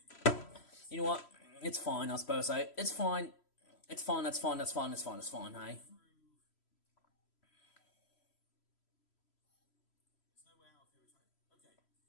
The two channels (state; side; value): late; right; 3.0 ms